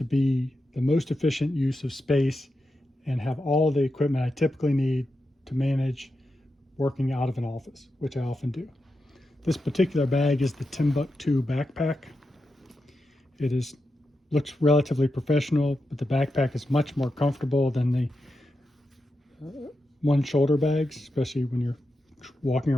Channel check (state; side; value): normal; both; correlation 0.88